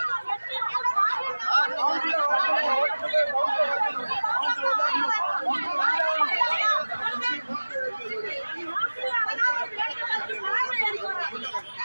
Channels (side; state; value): both; inverted; correlation -1.00